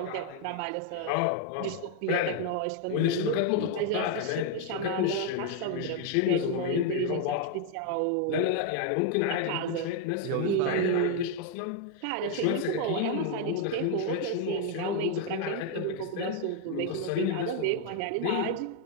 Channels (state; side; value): different; both; correlation 0.00